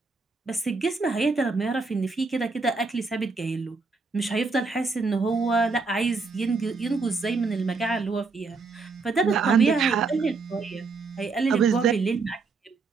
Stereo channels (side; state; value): left; quieter; 4.2 dB